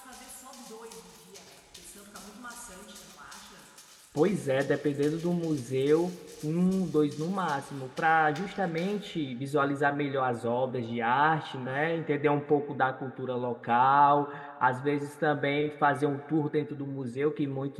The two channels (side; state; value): both; identical; correlation 1.00